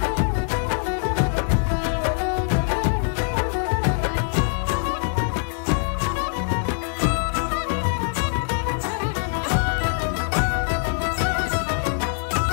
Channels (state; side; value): silent; right; 57 dB below the other